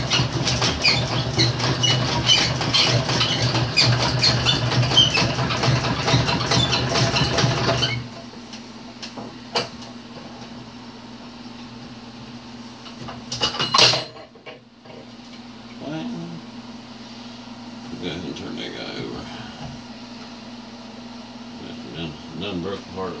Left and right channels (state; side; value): identical; both; correlation 1.00